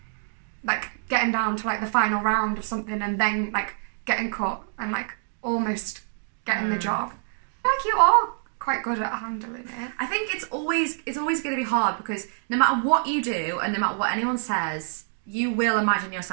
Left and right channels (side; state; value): left; silent; digital silence